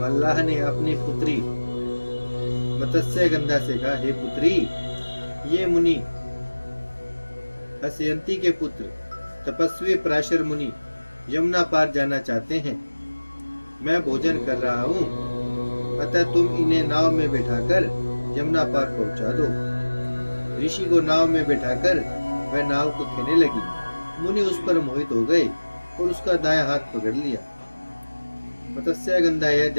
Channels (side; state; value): both; inverted; correlation -1.00